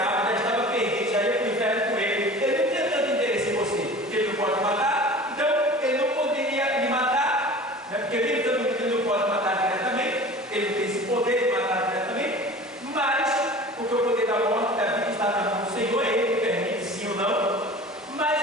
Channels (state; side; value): normal; both; correlation 0.40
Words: já estava perdido, já ia para o inferno com ele. Ele não tinha tanto interesse em você, porque ele não pode matar, então ele não poderia lhe matar, né? Porque mesmo tanto que ele não pode matar diretamente, ele não tem esse poder de matar diretamente, mas porque o poder da morte, da vida está na mão do Senhor, ele que permite sim ou não. Mas